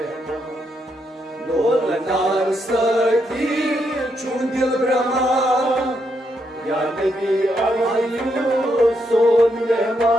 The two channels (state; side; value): normal; both; correlation 0.79